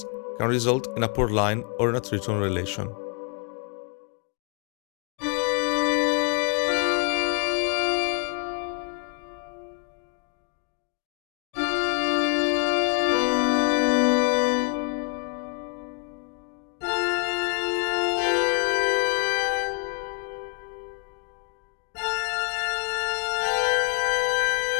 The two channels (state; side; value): quieter; right; 38.8 dB